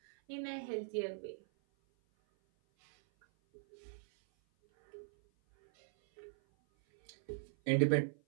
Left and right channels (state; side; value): silent; left; 52 dB below the other